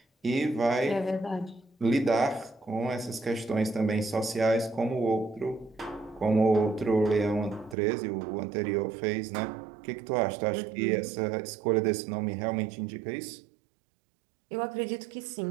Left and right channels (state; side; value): drops out; left; at 7.8 s